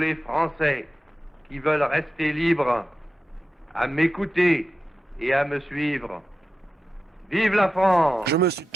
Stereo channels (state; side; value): normal; both; correlation 0.92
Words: Français qui veulent rester libres à m'écouter et à me suivre. Vive la France! Je me suis